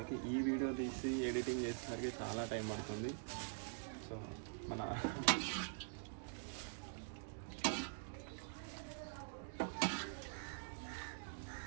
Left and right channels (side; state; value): left; silent; digital silence